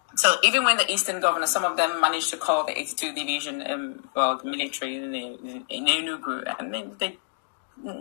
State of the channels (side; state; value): right; silent; digital silence